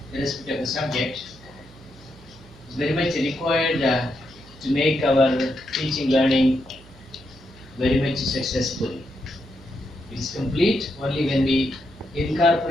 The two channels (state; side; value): noise; right; hum, 22 dB below the sound